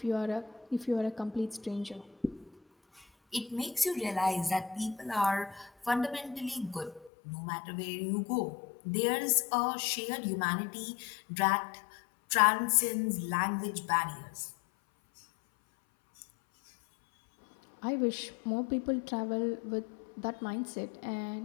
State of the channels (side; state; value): right; drops out; at 7.1 s